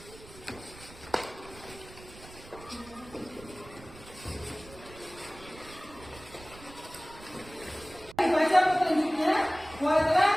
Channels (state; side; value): noise; right; rumble, 19 dB below the sound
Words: Dibaca petunjuknya, buatlah